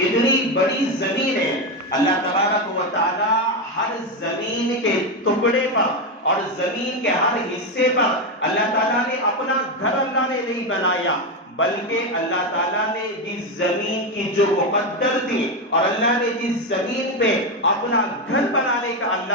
بڑی زمین ہے، اللہ تبارک و تعالیٰ ہر زمین کے ٹکڑے پر اور زمین کے ہر حصے پر اللہ تعالیٰ نے اپنا گھر اللہ نے نہیں بنایا، بلکہ اللہ تعالیٰ نے جس زمین کی جو مقدر تھی اور اللہ نے جس زمین پہ اپنا گھر بنانے کا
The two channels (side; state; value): both; normal; correlation 0.10